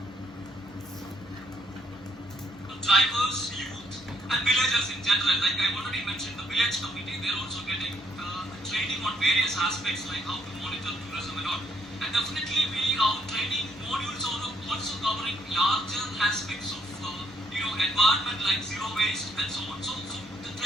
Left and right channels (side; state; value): both; normal; correlation 0.70